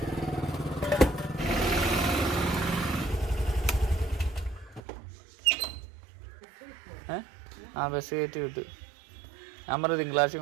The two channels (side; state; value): left; drops out; at 4.8 s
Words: ആ ബസ് കയറ്റി വിട്ടു. ഞാൻ പറഞ്ഞു തിങ്കളാഴ്ച